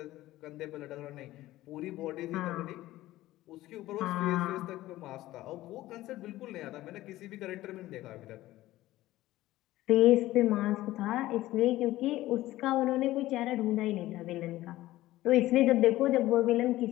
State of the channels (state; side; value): quieter; right; 16.2 dB